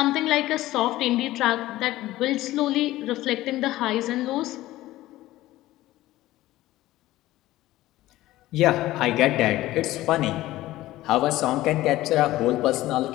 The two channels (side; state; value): right; quieter; 16.2 dB